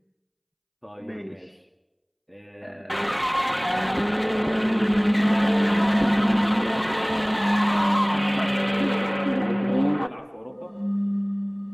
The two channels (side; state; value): both; identical; correlation 1.00